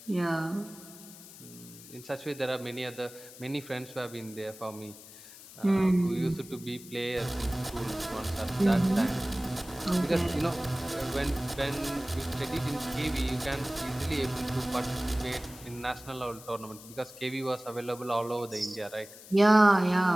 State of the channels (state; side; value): noise; left; hiss, 17 dB below the sound